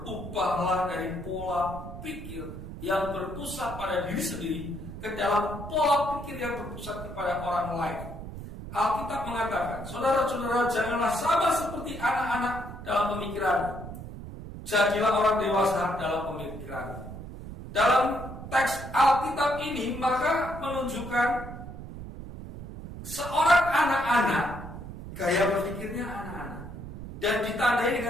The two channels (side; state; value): right; noise; rumble, 11 dB below the sound